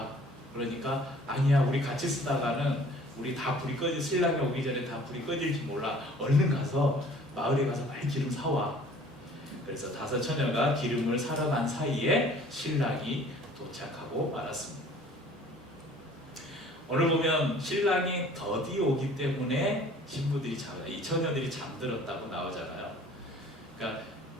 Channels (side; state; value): both; normal; correlation 0.52